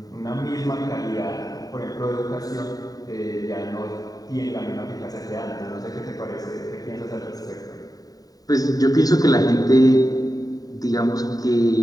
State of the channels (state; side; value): late; right; 0.18 ms